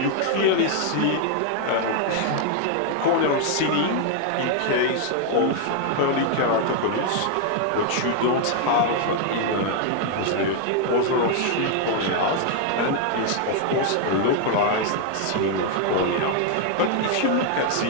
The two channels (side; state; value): both; different; correlation 0.00